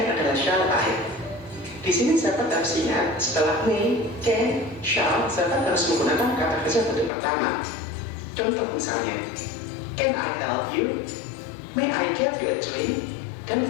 adalah shall I. Di sini sahabat harus ingat, setelah may, can, shall, sahabat harus menggunakan kata kerja bentuk pertama. Contoh misalnya, can I help you? May I get you a drink? Dan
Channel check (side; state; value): right; drops out; at 7.1 s